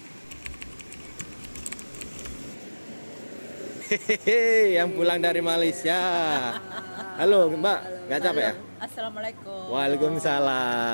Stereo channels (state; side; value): inverted; both; correlation -1.00